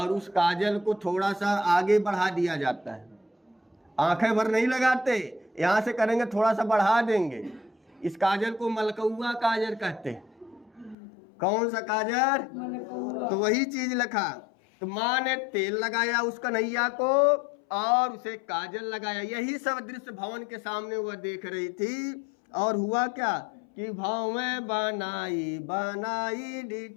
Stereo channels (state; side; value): drops out; right; at 11.0 s